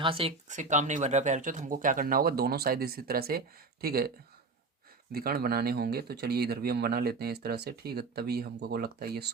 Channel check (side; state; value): left; quieter; 3.8 dB